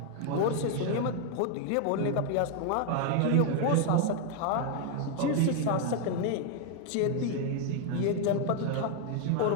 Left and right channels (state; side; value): different; both; correlation 0.01